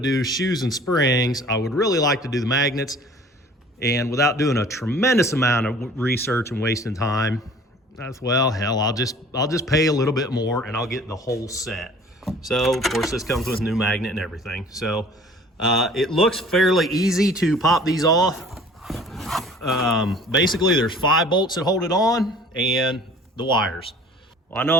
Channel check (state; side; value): normal; both; correlation 0.49